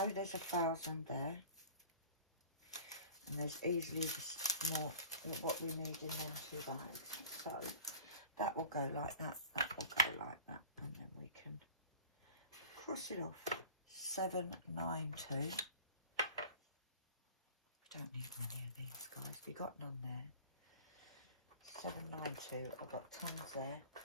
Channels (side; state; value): both; inverted; correlation -0.42